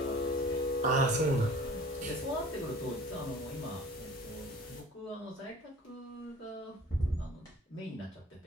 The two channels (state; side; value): normal; both; correlation 0.46